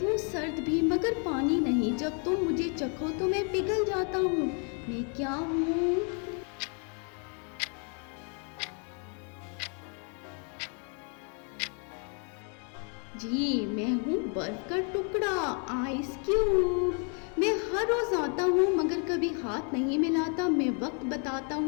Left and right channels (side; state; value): right; quieter; 39.4 dB